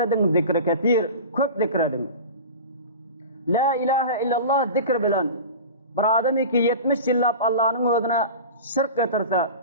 zikri ketir, köp zikredin. La ilahe illallah zikr bilen. Bir adam ki 70 yıllap Allah'ın özüne şirk getirse,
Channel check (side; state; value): both; inverted; correlation -0.33